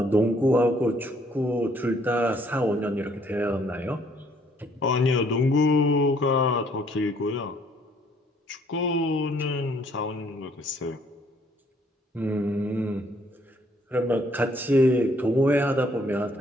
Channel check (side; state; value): both; normal; correlation 0.65